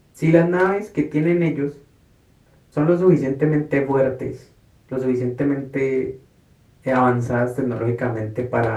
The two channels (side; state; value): both; identical; correlation 1.00